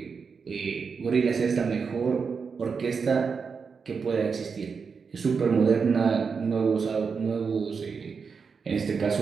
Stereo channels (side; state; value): left; quieter; 5.5 dB